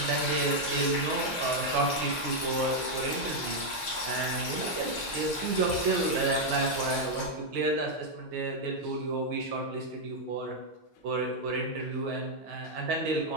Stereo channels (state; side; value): normal; both; correlation 0.00